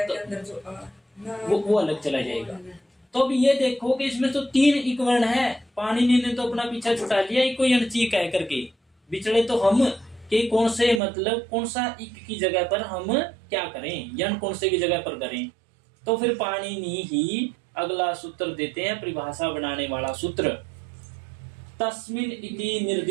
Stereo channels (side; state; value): left; drops out; at 11.0 s